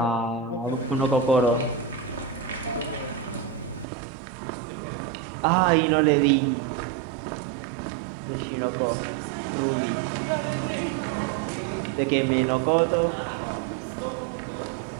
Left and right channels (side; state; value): left; drops out; at 3.9 s